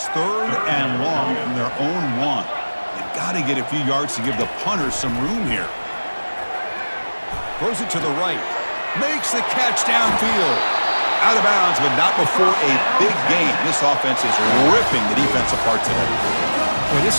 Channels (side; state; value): both; inverted; correlation -1.00